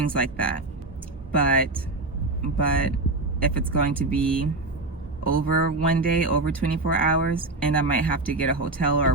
like that. But if it's going to be over one day, over 24 hours, and I might have to get a hotel or a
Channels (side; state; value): left; quieter; 3.1 dB